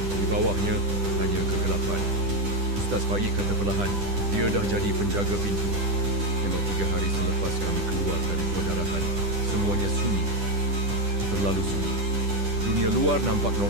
bawahnya hanya kegelapan. Ustaz Faik kata perlahan, dia dah jadi penjaga pintu. Memang 3 hari selepas kami keluar dari pendarahan, semuanya sunyi. Terlalu sunyi. Dunia luar nampak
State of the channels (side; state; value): left; late; 10 ms